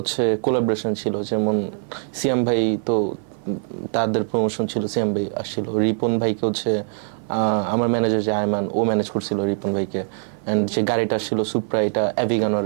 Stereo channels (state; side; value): silent; left; 56 dB below the other